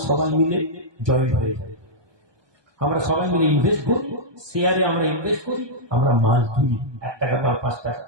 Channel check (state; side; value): late; left; 1.2 ms